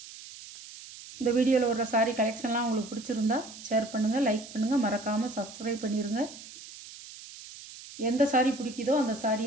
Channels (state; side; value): noise; right; hiss, 16 dB below the sound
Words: இந்த வீடியோவில் வர்ற சாரி கலெக்ஷன்லாம் உங்களுக்கு பிடிச்சிருந்தா ஷேர் பண்ணுங்கள், லைக் பண்ணுங்கள், மறக்காமல் சப்ஸ்கிரைப் பண்ணிடுங்க. எந்த சாரி பிடிக்குதோ அந்த